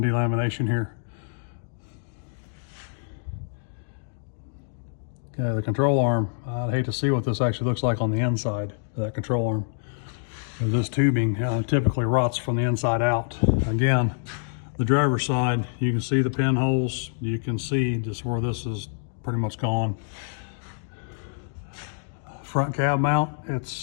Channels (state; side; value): silent; right; digital silence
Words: delamination here. Okay, the control arm, I'd hate to see what this actually looks like on the inside of that control arm. This tubing typically rots from the inside out. Again, the driver's side, you can see the pinholes. You can see just where this is pretty much gone. Front cab mount,